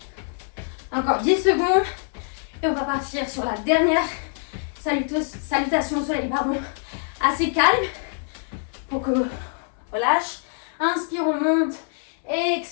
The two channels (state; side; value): silent; right; digital silence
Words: Encore 10 secondes. Et on va partir sur la dernière salutation au soleil, pardon. Assez calme. Pour que on lâche. Inspire, on monte.